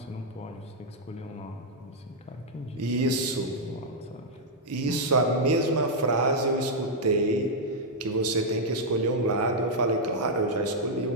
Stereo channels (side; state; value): both; normal; correlation -0.04